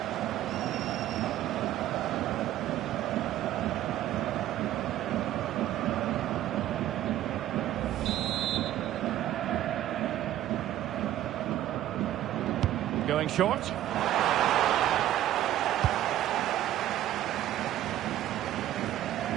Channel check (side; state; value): left; quieter; 13.1 dB